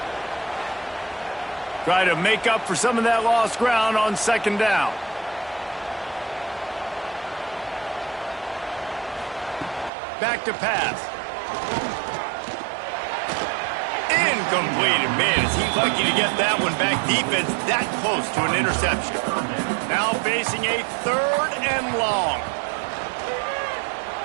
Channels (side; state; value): left; drops out; at 9.9 s